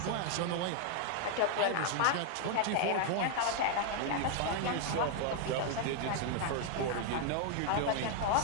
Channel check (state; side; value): different; both; correlation 0.00